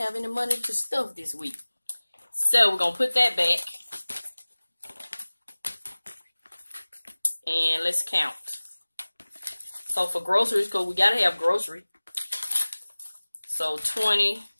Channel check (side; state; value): both; inverted; correlation -1.00